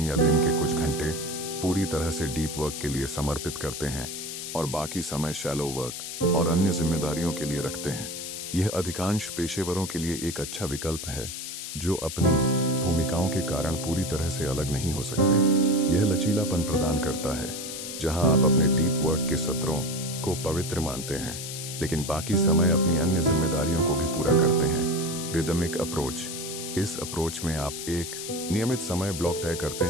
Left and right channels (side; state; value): left; noise; hiss, 7 dB below the sound